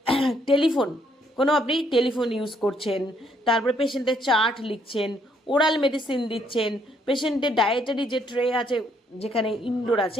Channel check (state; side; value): normal; both; correlation 0.70